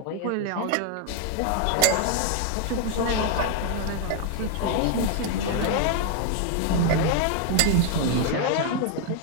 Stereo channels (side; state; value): both; different; correlation 0.00